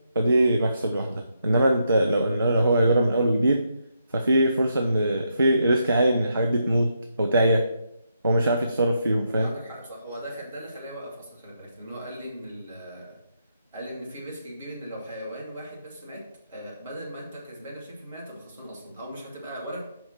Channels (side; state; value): both; inverted; correlation -0.80